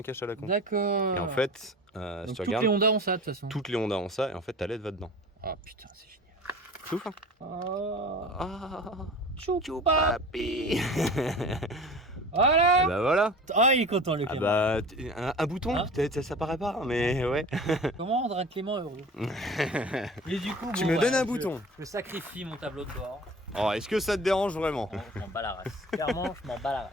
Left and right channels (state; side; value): normal; both; correlation 0.39